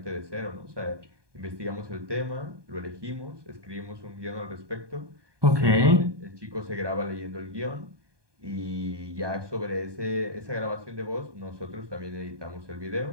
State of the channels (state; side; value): late; left; 1.2 ms